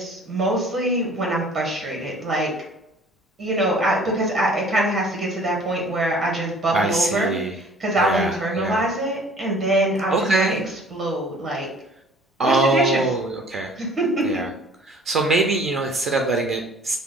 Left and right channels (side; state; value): both; normal; correlation 0.51